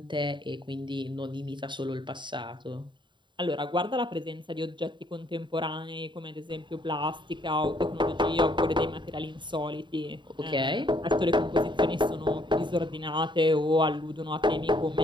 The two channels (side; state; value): left; late; 0.23 ms